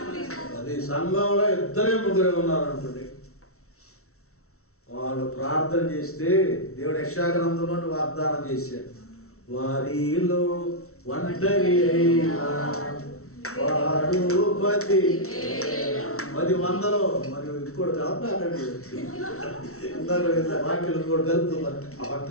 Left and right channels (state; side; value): late; right; 0.63 ms